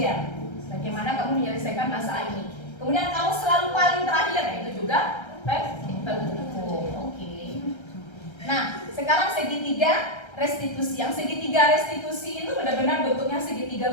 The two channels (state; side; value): late; right; 1.3 ms